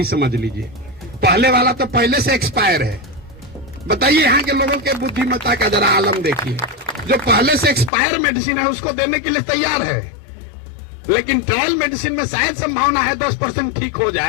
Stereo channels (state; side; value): drops out; right; at 7.9 s